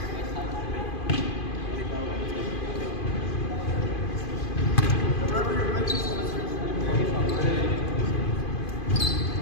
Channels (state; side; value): late; right; 2.5 ms